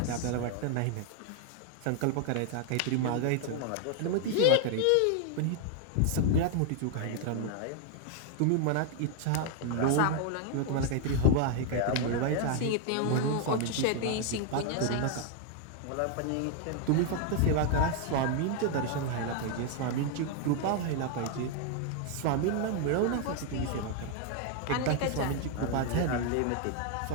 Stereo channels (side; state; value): both; different; correlation 0.00